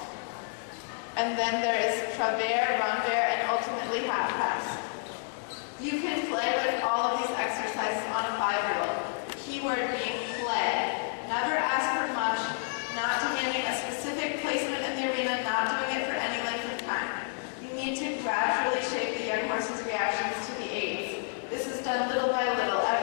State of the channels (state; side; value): silent; right; 58 dB below the other